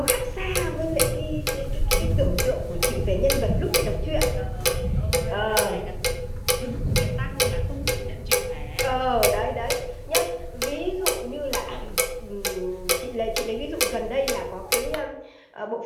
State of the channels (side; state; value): both; identical; correlation 1.00